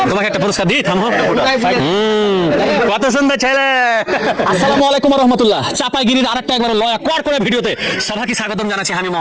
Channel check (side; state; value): both; identical; correlation 1.00